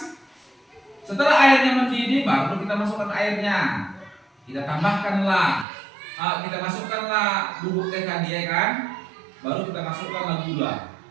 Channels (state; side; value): drops out; left; at 5.7 s